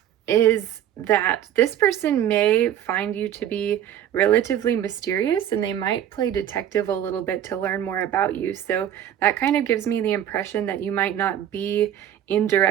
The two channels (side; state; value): left; quieter; 10.4 dB